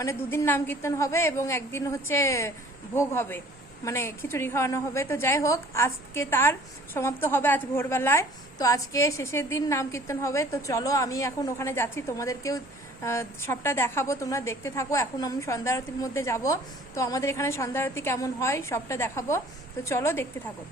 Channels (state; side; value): normal; both; correlation 0.52